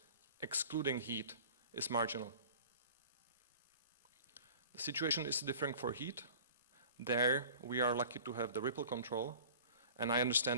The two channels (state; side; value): inverted; both; correlation -0.43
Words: excluding heat, is marginal. The situation is different for heat. There, we are lucky to have the ripple control. And I